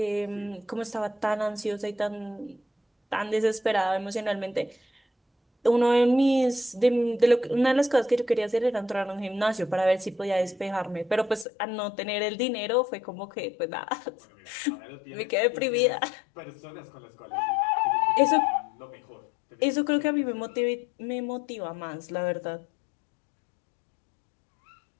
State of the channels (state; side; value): drops out; right; at 11.5 s